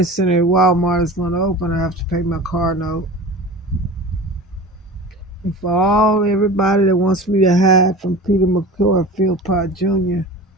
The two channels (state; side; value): normal; both; correlation 0.35